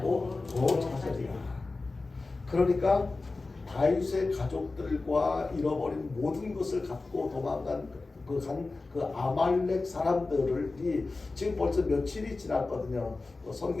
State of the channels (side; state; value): right; quieter; 3.6 dB